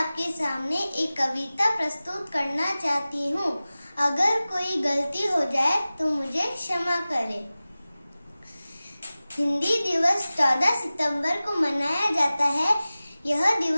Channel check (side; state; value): both; inverted; correlation -0.97